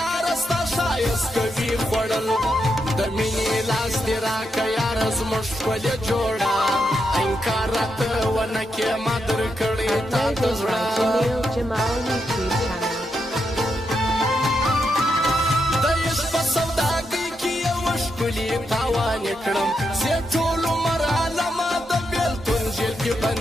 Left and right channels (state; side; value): normal; both; correlation 0.83